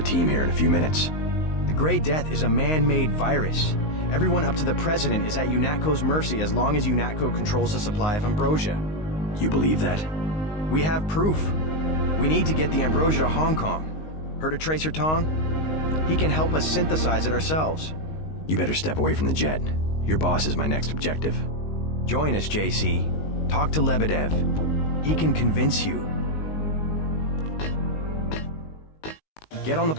team here in a few minutes. The Grey Death is a man-made virus. Everyone up to the President is at UNATCO's mercy as long as UNATCO controls the supply of ambrosia. You believe that? We have proof. We need to get the ambrosia to Hong Kong. Heard of Tracer Tong? He can help us synthesize it ourselves. You better step away from the jet. Your boss is my next objective. Join us, JC. Talk to Lebedev. He can convince you. Get on the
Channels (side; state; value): right; late; 19 ms